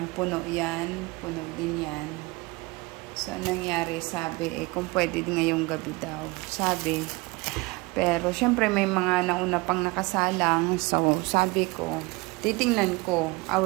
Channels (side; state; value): left; quieter; 24.7 dB